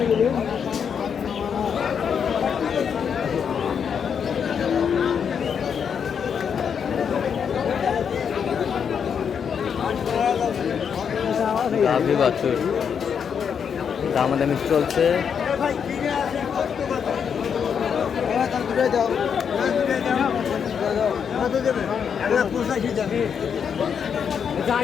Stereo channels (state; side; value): quieter; right; 7.2 dB